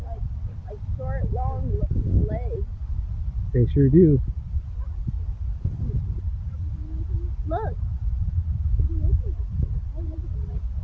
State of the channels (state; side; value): identical; both; correlation 1.00